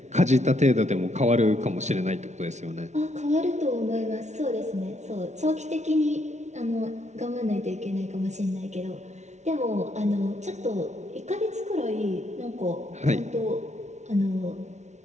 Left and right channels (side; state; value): left; late; 0.33 ms